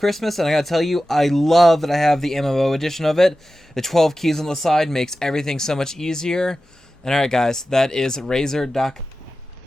and I gotta tell you, I love that I have the MMO edition of it. The 12 keys on the side makes everything so much easier. And alright guys, that is Razer.com.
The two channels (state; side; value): normal; both; correlation 0.94